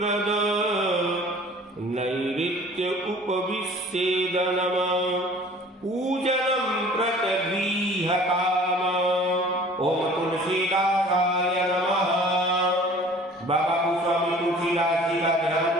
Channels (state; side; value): normal; both; correlation 0.48